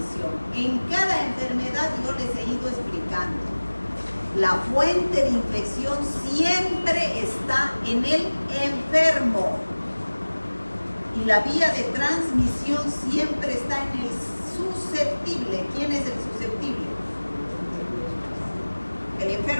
En cada enfermedad yo les he ido explicando. La fuente de infección siempre está en el enfermo y la vía de transmisión siempre está en el susceptible. ¿Quién es el susceptible? ¿El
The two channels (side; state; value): both; inverted; correlation -1.00